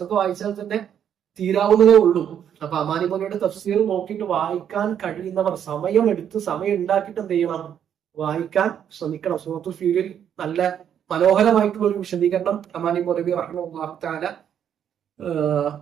വായിച്ചാൽ തന്നെ തീരാവുന്നതേ ഉള്ളൂ. അപ്പൊ അമാനുമാനവയുടെ തഫ്സീർ നോക്കിയിട്ട് വായിക്കാൻ കഴിയുന്നവർ സമയം ഉണ്ടാക്കിയിട്ട് എന്ത് ചെയ്യണം, വായിക്കാൻ ശ്രമിക്കണം. സൂറത്തുൽ ഫീലിൽ നല്ല മനോഹരമായിട്ടുള്ള ഒരു വിശദീകരണം അമാനി മൗലവി റഹിമഹുല്ലാഹു തആല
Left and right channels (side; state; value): left; quieter; 9.1 dB